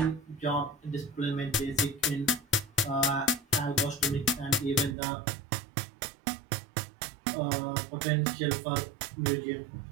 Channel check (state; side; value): drops out; left; at 5.0 s